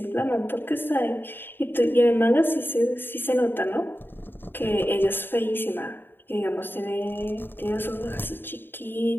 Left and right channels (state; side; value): late; right; 0.098 ms